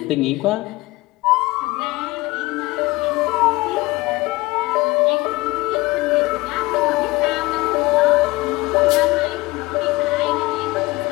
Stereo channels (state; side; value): quieter; right; 21.0 dB